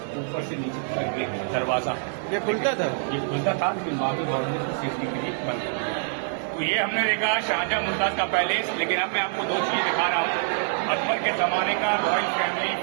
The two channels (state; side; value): silent; left; digital silence